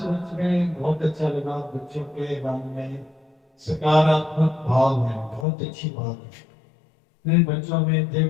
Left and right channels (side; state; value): right; drops out; at 5.5 s